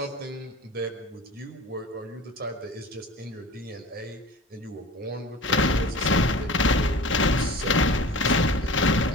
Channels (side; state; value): both; normal; correlation 0.38